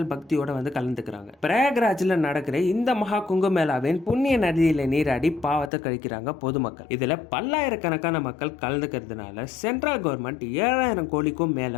பக்தியோட வந்து கலந்துக்கிறாங்க. பிரயாக்ராஜ்ல நடக்கிற இந்த மகா கும்பமேளாவின் புண்ணிய நதியில நீராடி பாவத்தை கழிக்கிறாங்க பொதுமக்கள். இதுல பல்லாயிரக்கணக்கான மக்கள் கலந்துக்கிறதுனால சென்ட்ரல் கவர்மெண்ட் 7000 கோடிக்கும்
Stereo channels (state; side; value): drops out; right; at 5.7 s